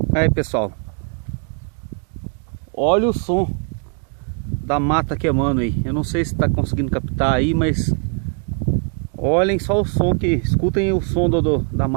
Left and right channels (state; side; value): quieter; left; 39.3 dB